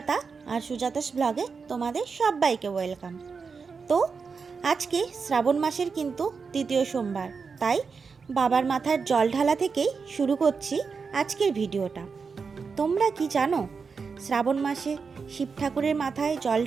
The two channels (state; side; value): quieter; left; 5.2 dB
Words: আর সুজাতাস ব্লগে তোমাদের সবাইকে ওয়েলকাম। তো আজকে শ্রাবণ মাসের কিন্তু তৃতীয় সোমবার, তাই বাবার মাথার জল ঢালা থেকেই শুরু করছি আজকের ভিডিওটা। তোমরা কি জানো শ্রাবণ মাসে শিব ঠাকুরের মাথায় জল